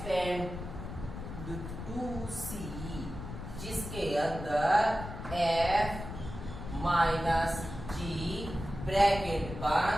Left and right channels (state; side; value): noise; left; rumble, 9 dB below the sound